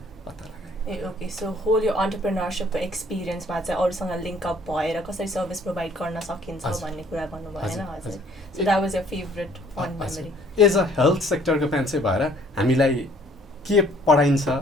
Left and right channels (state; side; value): normal; both; correlation 0.59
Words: पत्ता लगाएँ। ए ओके, सो होल यो अन्टरप्रेन्योरसिपको एक्सपिरियन्समा चाहिँ अरूसँग लिङ्क अप भएर कसरी सर्भिस प्रोभाइड गर्न सकिन्छ भन्ने कुरा भन्नुभयो होइन हजुर। So that was your favourite fun memory. As a health सेक्टरको मान्छे भएर हामीलाई के